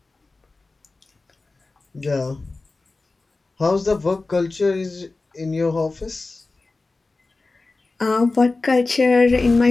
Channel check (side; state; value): right; quieter; 3.5 dB